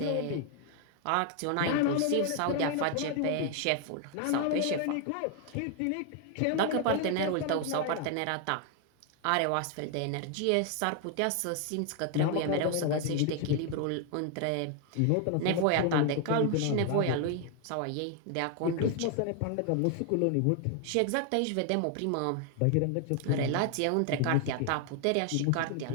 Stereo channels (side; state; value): both; different; correlation 0.00